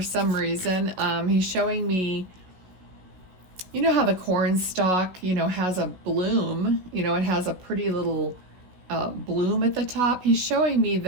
some reason. He's showing me, how the corn stalk, has a bloom, it has a pretty little bloom at the top. He's showing me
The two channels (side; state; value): left; late; 16 ms